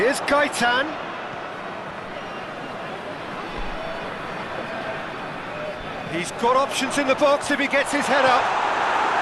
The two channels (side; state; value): both; identical; correlation 1.00